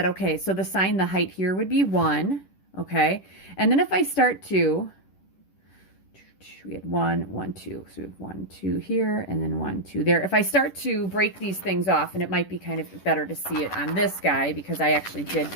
okay, so the sine, the height here would be 1. Okay. And then if I start to, we had 1, 1, 2. So we have 1, 2 here, and then 1, 2 there. If I start to break these things off, and it might be kind of better to see it on this guy because I actually did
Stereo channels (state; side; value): late; right; 10 ms